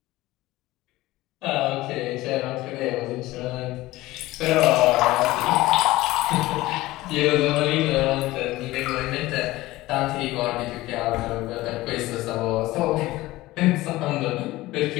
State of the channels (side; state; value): right; quieter; 18.1 dB